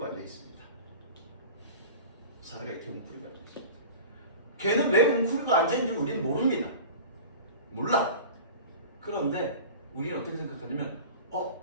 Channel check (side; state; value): both; inverted; correlation -0.37